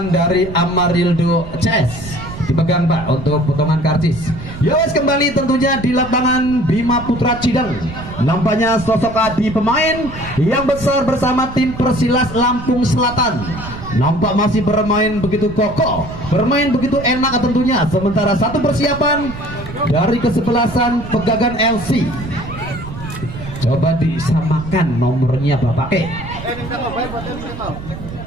dari Amarildo CS. Dipegang Pak untuk potongan karcis. Yowes kembali tentunya di lapangan Bima Putra Cideng. Nampaknya sosok Adi pemain yang besar bersama tim Persilas Lampung Selatan. Nampak masih bermain begitu kokoh, bermain begitu enak tentunya. Sementara satu persiapan dari kesebelasan Pegagan LC. Coba disamakan nomornya Bapak E.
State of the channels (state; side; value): noise; right; rumble, 12 dB below the sound